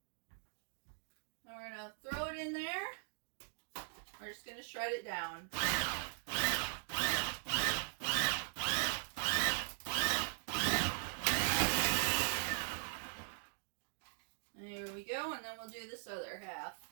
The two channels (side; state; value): left; silent; digital silence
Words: Now we're going to throw it in there. We're just going to shred it down. There we go, and then we'll do this other half.